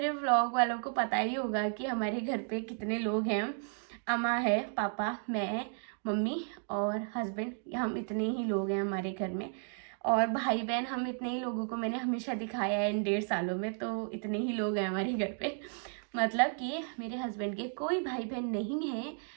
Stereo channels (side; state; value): left; silent; 55 dB below the other